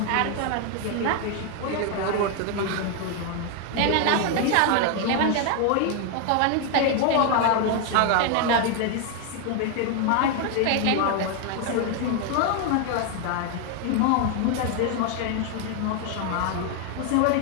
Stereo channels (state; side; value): different; both; correlation 0.00